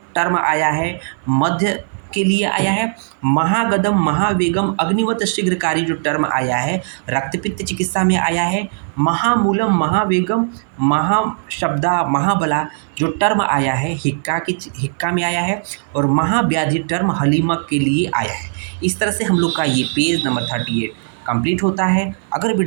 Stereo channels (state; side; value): silent; left; 59 dB below the other